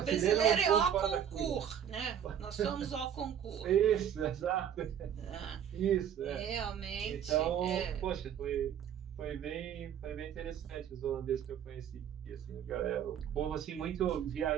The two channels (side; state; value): left; quieter; 9.1 dB